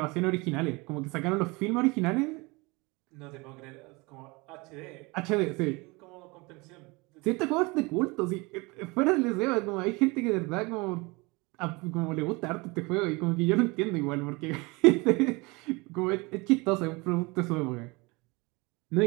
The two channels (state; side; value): quieter; left; 25.6 dB